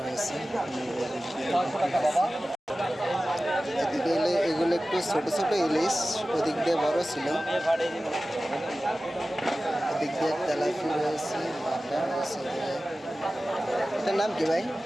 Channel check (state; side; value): normal; both; correlation 0.96